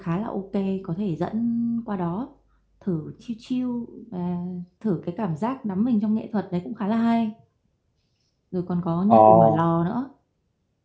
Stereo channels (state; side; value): identical; both; correlation 1.00